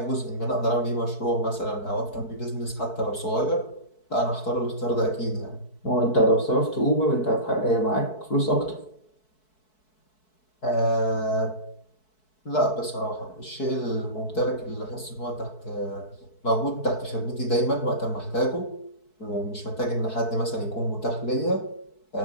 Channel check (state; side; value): late; right; 4.6 ms